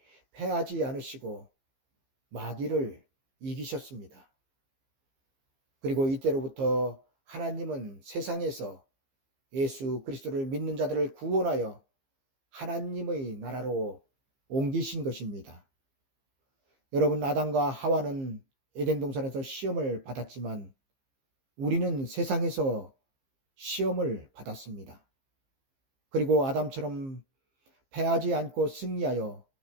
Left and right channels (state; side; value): late; left; 15 ms